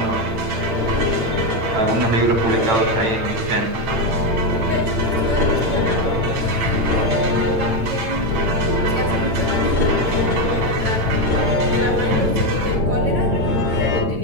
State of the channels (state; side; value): late; left; 8.9 ms